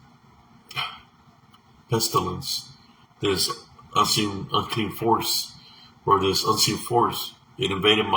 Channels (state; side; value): identical; both; correlation 1.00